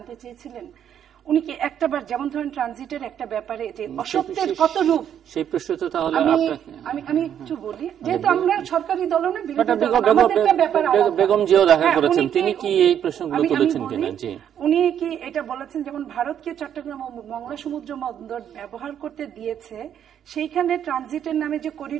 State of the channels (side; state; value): left; quieter; 9.4 dB